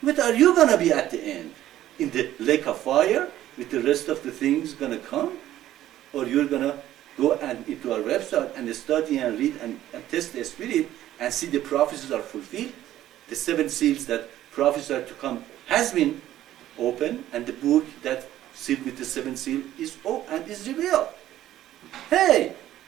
what are you going to be at the end? In the lake of fire, with the rest of the things going to come? Or you're going to go into our website and study and read and test the spirit and see the prophecies are fulfilled? The 7 seals that prophesied to come has been opened, and the book that sealed with the 7 seal is open and is revealed. Hey!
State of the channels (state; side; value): quieter; left; 13.2 dB